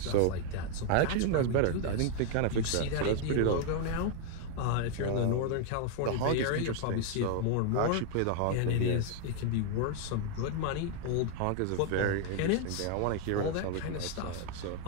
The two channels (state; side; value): different; both; correlation 0.00